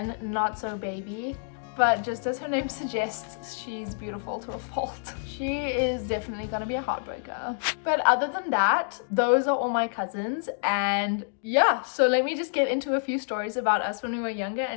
not so baby. But just as her name suggests, she's beautiful to a fault. She is definitely gonna be a heartbreaker. But other than that, those are all my cousins. And yeah, so let me just get into a few stories about us when we were younger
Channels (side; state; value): right; silent; digital silence